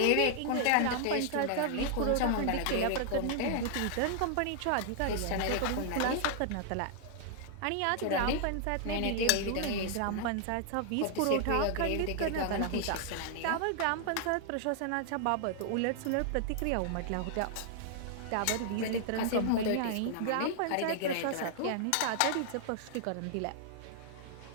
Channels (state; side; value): different; both; correlation 0.00